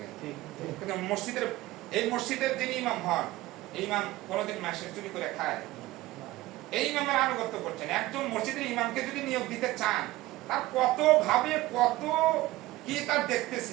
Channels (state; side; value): quieter; left; 18.0 dB